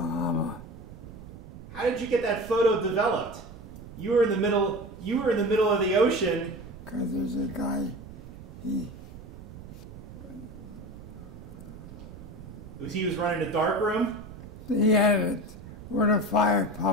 How did you get that photo developed? You were in the middle of the ocean. Because there's a guy, He was running a dark room? he had it where the fire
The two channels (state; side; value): noise; right; rumble, 15 dB below the sound